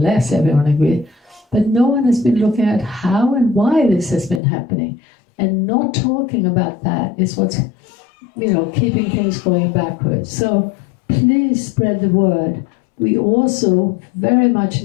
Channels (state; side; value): drops out; right; at 4.4 s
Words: everyone agrees. But no one has been looking at how and why this has been happening. And not talking about that is what's, keeping things going backwards. So please spread the word. We also very much